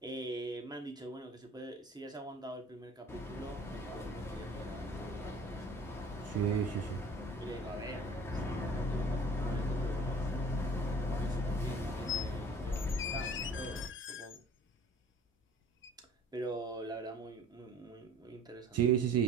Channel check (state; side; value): normal; both; correlation 0.49